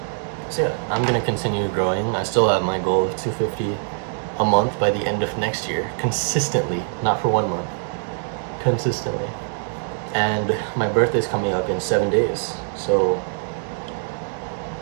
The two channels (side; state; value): left; silent; 63 dB below the other